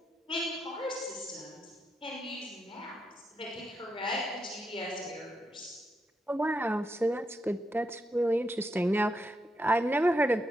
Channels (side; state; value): both; normal; correlation 0.82